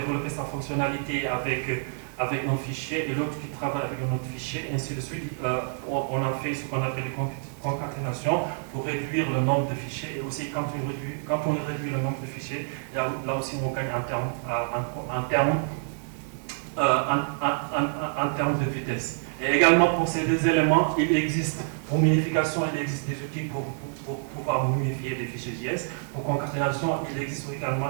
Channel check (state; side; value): silent; left; digital silence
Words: sa fonctionnalité avec un fichier et l'autre qui travaille avec un autre fichier, et ainsi de suite. On a fait ce qu'on appelle les concaténations pour réduire le nombre de fichiers. Et aussi, quand on réduit le nombre de fichiers, là aussi, on gagne en termes de vitesse. Et également pour ces deux éléments, il existe, pour minification, il existe des outils pour pouvoir minifier des fichiers JS. Pour concaténation, il existe